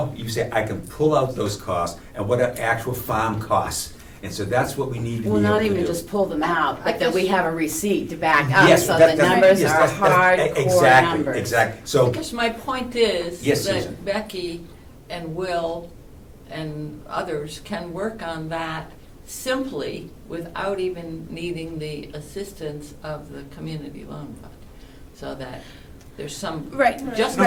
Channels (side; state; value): both; identical; correlation 1.00